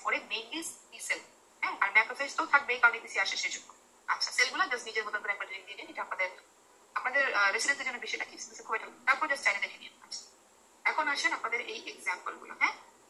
4 এ মেইনলি টি সেল, হ্যাঁ, আর ম্যাক্রোফেজ তো থাকবেই, কারণ এপিসি আসে সেজন্য। আচ্ছা, সেলগুলো জাস্ট নিজের মতন করে একবার লিখে দিয়ে নিন, এটা আপনাদের রেসিডেন্সের জন্য বেশি রাখি, খুব একটা, তারপর জাস্ট চাইলে দেখে নিন। আচ্ছা, এখন আসেন আপনাদের এই এক্সাম্পল গুলো। হ্যাঁ,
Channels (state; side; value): identical; both; correlation 1.00